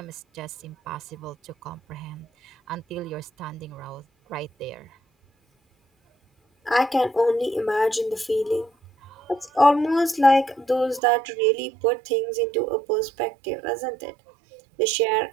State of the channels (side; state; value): left; drops out; at 11.0 s